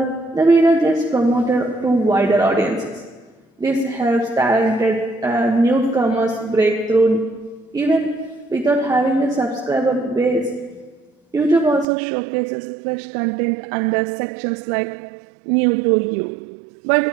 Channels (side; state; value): left; drops out; at 11.9 s